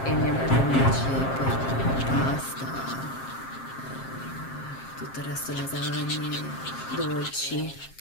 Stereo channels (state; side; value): late; right; 7.5 ms